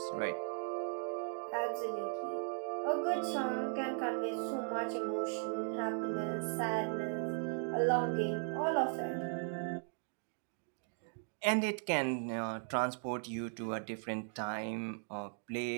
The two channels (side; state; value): left; silent; 53 dB below the other